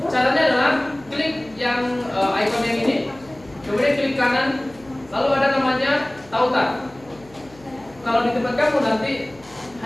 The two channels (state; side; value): noise; left; hum, 25 dB below the sound